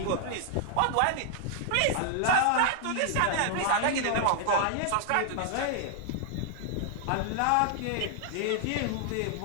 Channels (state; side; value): different; both; correlation 0.00